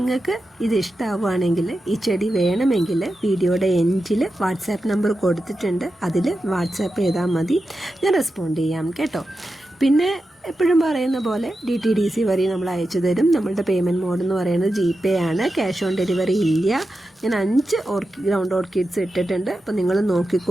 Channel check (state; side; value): normal; both; correlation 0.91